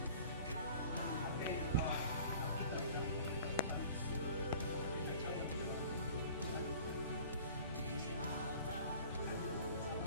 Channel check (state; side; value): inverted; both; correlation -0.46